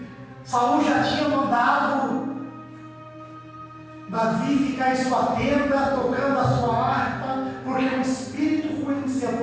Saul já tinha mandado Davi ficar em sua tenda, tocando a sua harpa, porque um espírito ruim se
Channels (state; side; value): identical; both; correlation 1.00